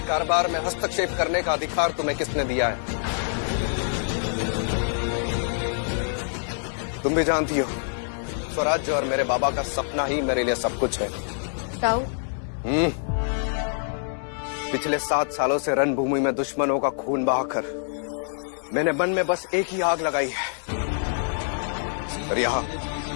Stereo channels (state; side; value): silent; right; digital silence